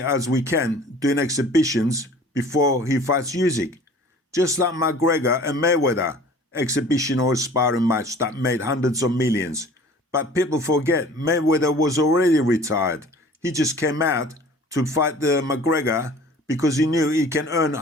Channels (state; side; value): normal; both; correlation 0.47